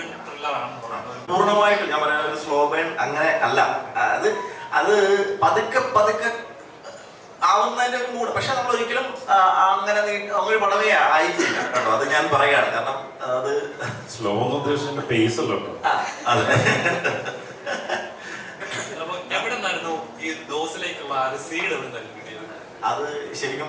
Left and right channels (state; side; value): identical; both; correlation 1.00